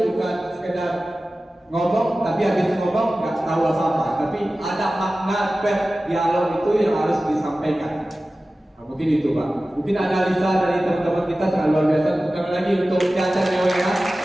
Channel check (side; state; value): both; normal; correlation 0.96